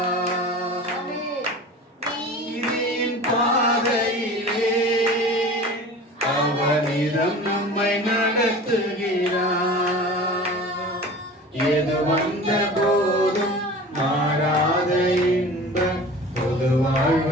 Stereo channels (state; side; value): normal; both; correlation 0.38